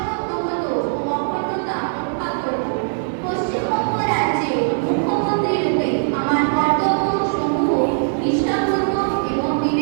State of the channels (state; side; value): silent; left; digital silence